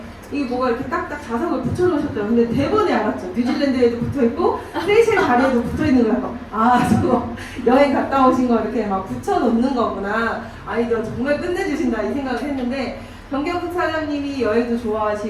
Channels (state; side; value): identical; both; correlation 1.00